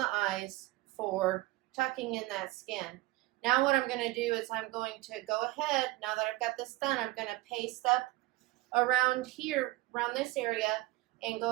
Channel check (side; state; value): left; quieter; 19.2 dB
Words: eyes for tucking in that skin. Now what I'm going to do is I'm going to go ahead, now that I've got this done, I'm going to paste up around here, around this area, and